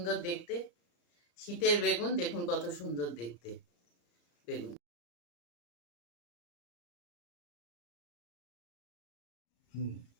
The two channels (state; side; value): late; right; 34 ms